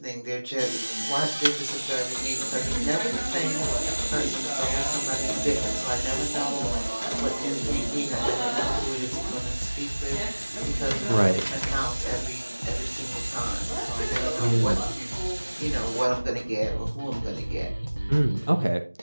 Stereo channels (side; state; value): both; inverted; correlation -1.00